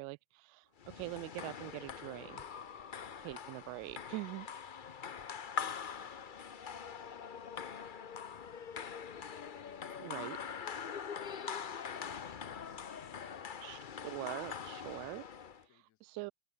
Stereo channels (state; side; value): late; right; 2.3 ms